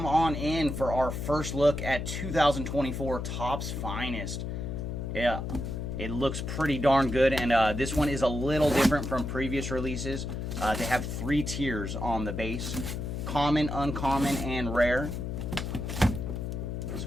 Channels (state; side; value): noise; left; hum, 4 dB below the sound